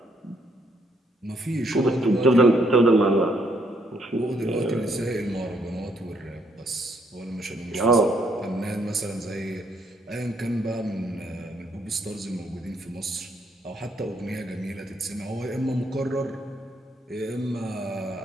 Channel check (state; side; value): normal; both; correlation 0.71